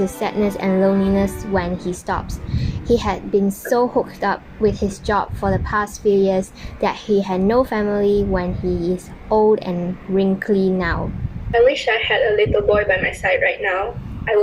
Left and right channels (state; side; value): identical; both; correlation 1.00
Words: sadness and loneliness when he stops. He had been so hooked up with his job for the past few years that he had no family when he is old and wrinkly now. I wish I had a little boy by my side right now. I